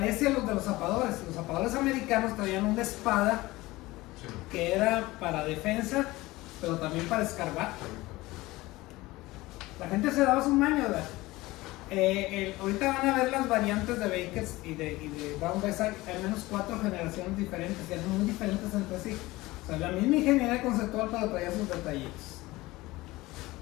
a los de los zapadores. Los zapadores americanos traían una espada que era para defensa, pero también para escarbar. La gente se daba su maño, ¿verdad? Ahorita van a ver las variantes de Bakers y de Brown Bess. Hay al menos 4 generaciones diferentes, que son muy diferentes entre sí. O sea, la misma ingeniería conceptual, pero traía sus detallitos.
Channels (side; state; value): right; quieter; 19.7 dB